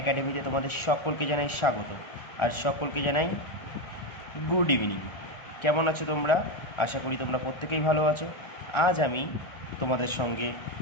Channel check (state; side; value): late; right; 1.4 ms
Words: তোমাদের সকলকে জানাই স্বাগত, আর সকলকে জানাই গুড ইভিনিং। কেমন আছো তোমরা? আশা করি তোমরা প্রত্যেকেই ভালো আছো। আজ আমি তোমাদের সঙ্গে